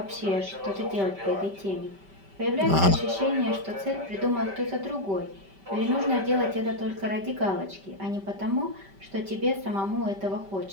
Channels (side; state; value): left; late; 5.1 ms